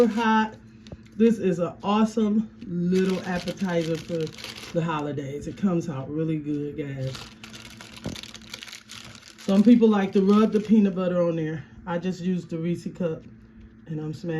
hot. This is an awesome little appetizer for the holidays. It comes out really good, guys. Some people like to rub the peanut butter on there. I just used the Resse cup. And I'm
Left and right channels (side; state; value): both; identical; correlation 1.00